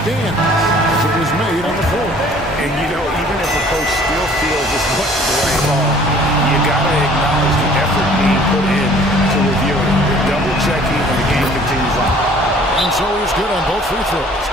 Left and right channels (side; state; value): both; normal; correlation 0.54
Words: as it was made on the floor. And, you know, even if a coach still feels this wasn't the right call, you got to acknowledge the effort being put in to review it. Double-checking, and the game continues on. And so he's good on both free throws,